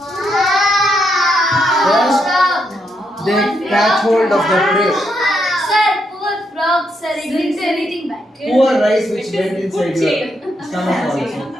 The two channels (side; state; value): both; normal; correlation 0.79